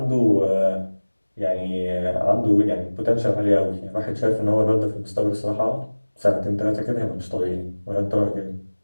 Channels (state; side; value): inverted; both; correlation -1.00